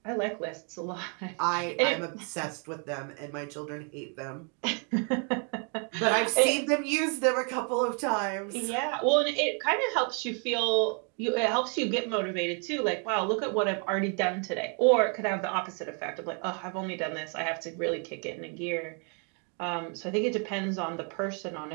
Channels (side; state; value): left; quieter; 39.1 dB